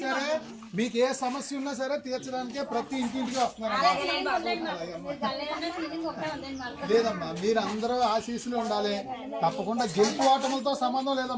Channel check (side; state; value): both; identical; correlation 1.00